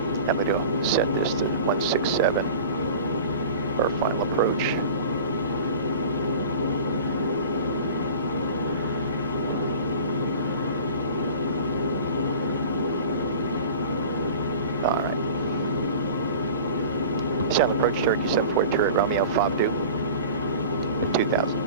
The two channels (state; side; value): inverted; both; correlation -0.39